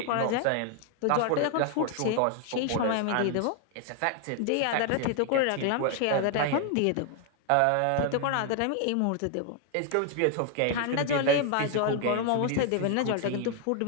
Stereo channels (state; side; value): different; both; correlation 0.00